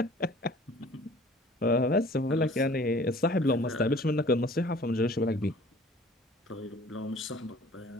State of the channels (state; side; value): normal; both; correlation 0.49